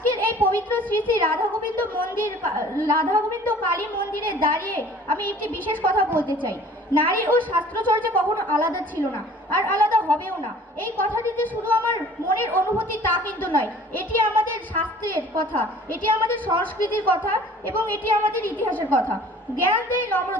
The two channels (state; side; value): normal; both; correlation 0.50